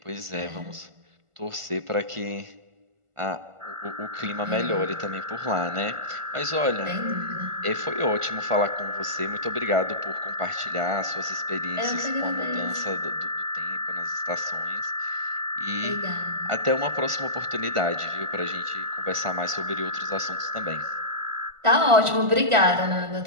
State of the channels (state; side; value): late; left; 1.5 ms